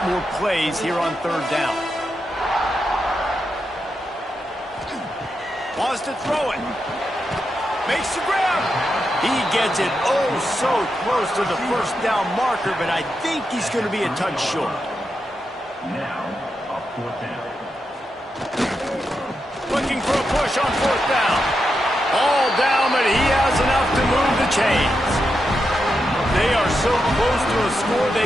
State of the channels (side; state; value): both; normal; correlation 0.86